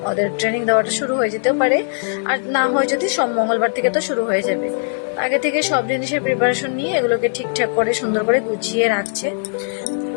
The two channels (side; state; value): right; silent; 60 dB below the other